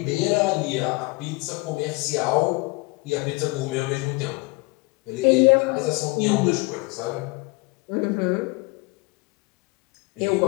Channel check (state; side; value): quieter; right; 25.6 dB